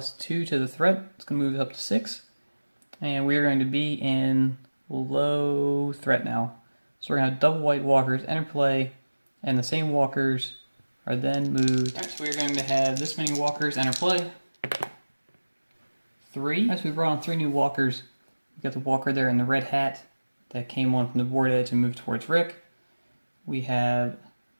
to the threat. It's going to move it up to 6. And we're going to be in low threat now. So we're going to have double white walkers enter play, and the same walkers are then moved. Alright, so we're going to have this many walkers enter play. 3. As we brought on 3 new walkers. We've got the walker there in the red hat that came on from the board edge and moved towards Rick. We have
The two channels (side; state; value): both; inverted; correlation -1.00